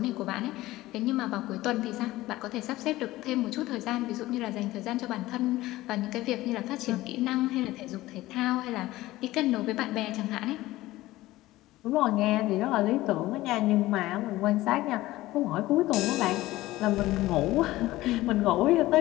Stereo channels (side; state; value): right; quieter; 17.2 dB